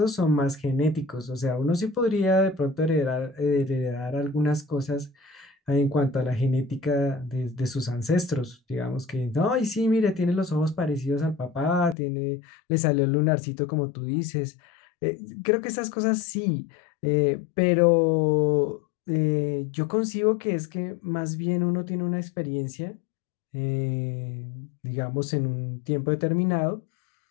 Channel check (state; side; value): drops out; right; at 12.0 s